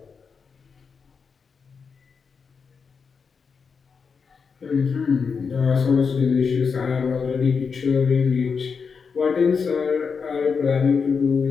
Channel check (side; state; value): right; quieter; 5.7 dB